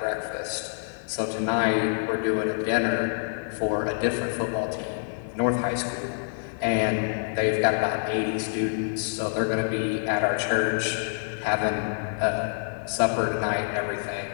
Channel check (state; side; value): silent; right; 60 dB below the other